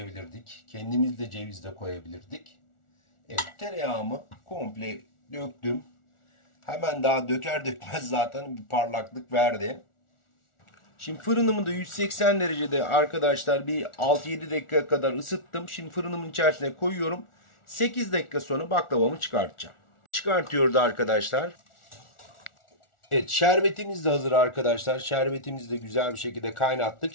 Kendimiz de ceviz de koyabilirdik. Evet, tereyağımı komple döktüm. Hemen daha döker dökmez zaten bir parlaklık verdi. Şimdi fırınımı da 180 derecede arkadaşlar bir 6-7 dakika kadar ısıttım. Şimdi fırınımın içerisine koyuyorum. 8 dakika sonra baklavamı çıkartacağım. Çıkartıyoruz arkadaşlar. Evet, şerbetimiz de hazır arkadaşlar. Şerbetimizi de güzel bir şekilde kaynattık.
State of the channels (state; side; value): late; right; 1.4 ms